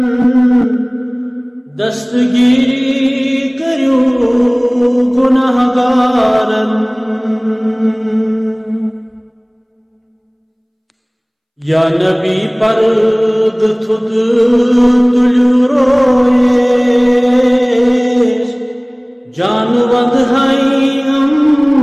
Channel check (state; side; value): identical; both; correlation 1.00